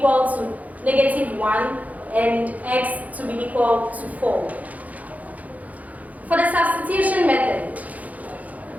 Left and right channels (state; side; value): late; left; 0.075 ms